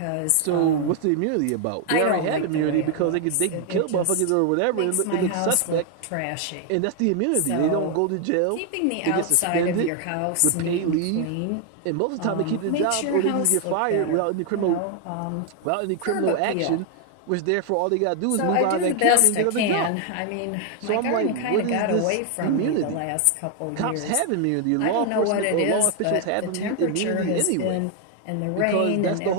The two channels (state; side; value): different; both; correlation 0.00